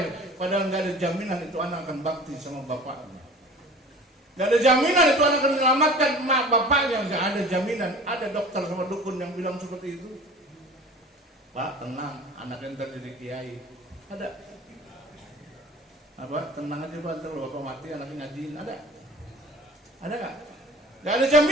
Padahal gak ada jaminan itu anak akan bakti sama bapaknya. Gak ada jaminan itu anak akan menyelamatkan mak bapaknya. Gak ada jaminan. Ada dokter sama dukun yang bilang seperti itu. Pak tenang, anaknya ntar jadi kiai. Ada. Apa? Tenang aja Pak, ntar bapak mati anaknya ngajiin. Ada gak? Gak ada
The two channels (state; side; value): normal; both; correlation 0.42